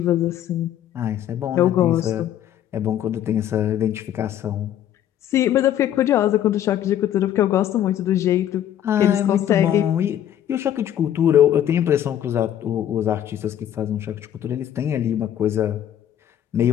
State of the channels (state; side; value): quieter; right; 10.9 dB